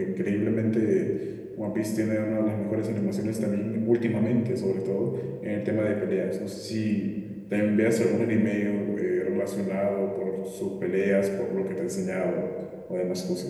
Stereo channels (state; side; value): identical; both; correlation 1.00